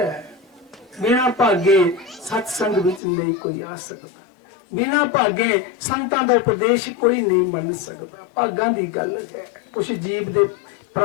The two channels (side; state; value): right; drops out; at 3.0 s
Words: ਬਿਨਾਂ ਭਾਗੇ ਸਤਸੰਗ ਵਿੱਚ ਨਹੀਂ ਕੋਈ ਆ ਸਕਦਾ, ਬਿਨਾਂ ਭਾਗੇ ਸੰਤਾਂ ਦਾ ਉਪਦੇਸ਼ ਕੋਈ ਨਹੀਂ ਮੰਨ ਸਕਦਾ। ਭਾਗਾਂ ਦੀ ਗੱਲ ਹੈ। ਕੁਛ ਜੀਵ ਦੇ